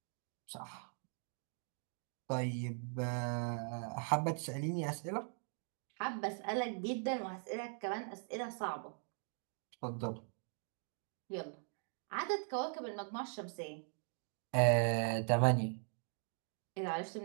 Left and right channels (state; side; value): silent; left; 51 dB below the other